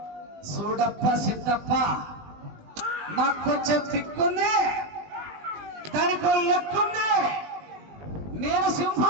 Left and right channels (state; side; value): late; left; 20 ms